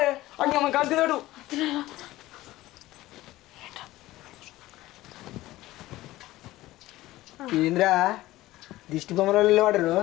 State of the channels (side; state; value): right; quieter; 16.9 dB